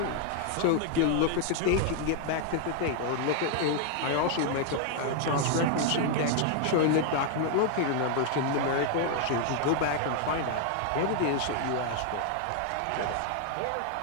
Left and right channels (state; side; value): different; both; correlation 0.00